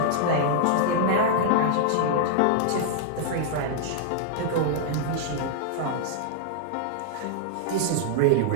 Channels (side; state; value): both; different; correlation -0.01